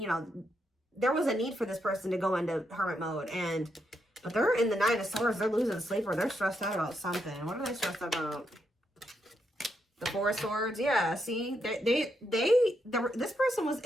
know, there was a need for this person to go into hermit mode, but they're in the Nine of Swords. They're losing sleep, or they're stressed out about something. What are they stressed out about? The Four of Swords. Yeah, see, this person was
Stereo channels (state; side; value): normal; both; correlation 0.80